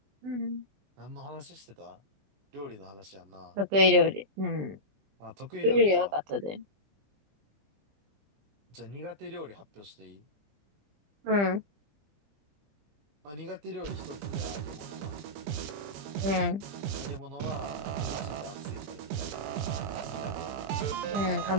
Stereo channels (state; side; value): late; left; 20 ms